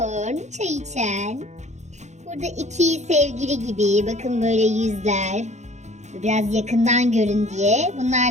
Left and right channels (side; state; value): left; late; 0.33 ms